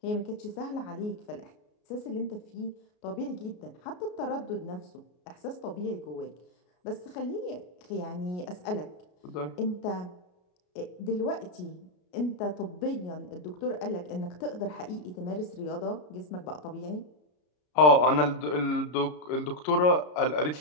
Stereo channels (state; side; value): late; right; 33 ms